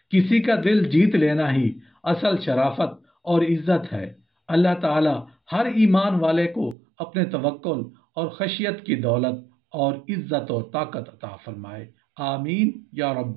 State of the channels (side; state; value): left; drops out; at 6.8 s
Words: किसी का दिल जीत लेना ही असल शराफत और इज्जत है। अल्लाह ताला हर ईमान वाले को अपने तवक्कुल और खशियत की दौलत और इज्जत और ताकत अता फरमाए। आमीन या